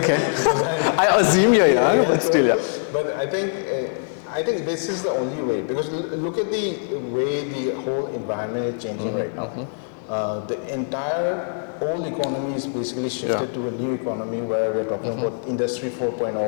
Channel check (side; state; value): right; silent; digital silence